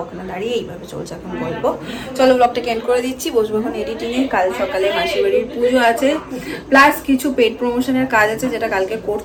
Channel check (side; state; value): both; identical; correlation 1.00